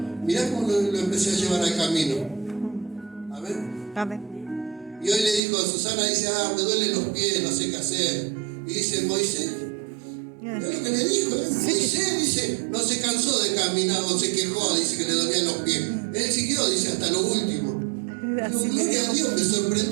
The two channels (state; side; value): drops out; left; at 5.4 s